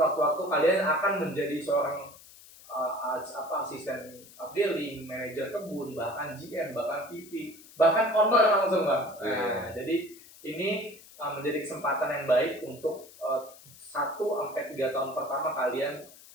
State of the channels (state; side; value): noise; left; hiss, 21 dB below the sound